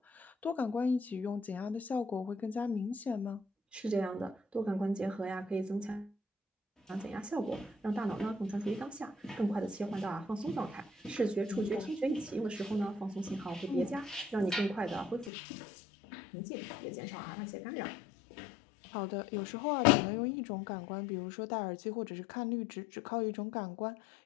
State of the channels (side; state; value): right; drops out; at 15.3 s